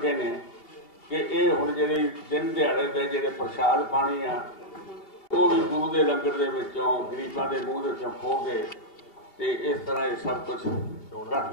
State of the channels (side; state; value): right; late; 2.8 ms